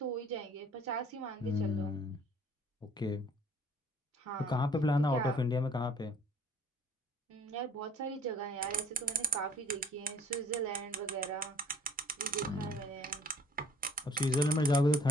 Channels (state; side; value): normal; both; correlation 0.55